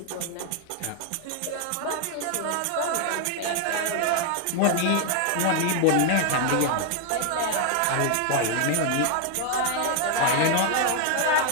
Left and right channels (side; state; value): both; different; correlation 0.00